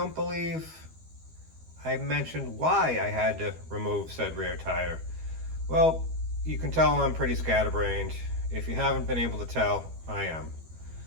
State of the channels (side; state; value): left; late; 12 ms